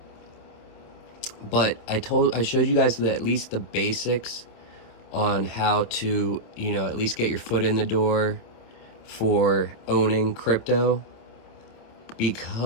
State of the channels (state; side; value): late; right; 27 ms